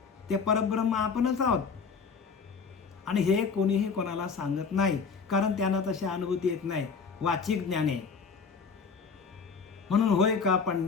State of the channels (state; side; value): quieter; right; 5.4 dB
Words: ते परब्रह्म आपणच आहोत. आणि हे कोणीही कोणाला सांगत नाही, कारण त्यांना तशी अनुभूती येत नाही. वाचिक ज्ञान आहे. म्हणून होय का